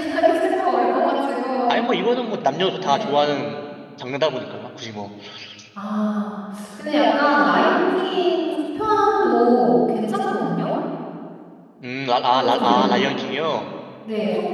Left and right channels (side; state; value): both; identical; correlation 1.00